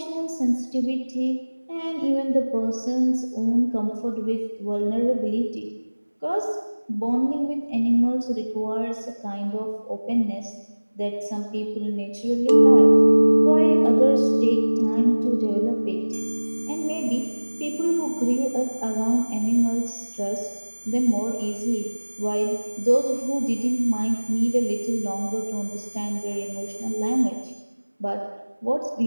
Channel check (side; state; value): both; inverted; correlation -1.00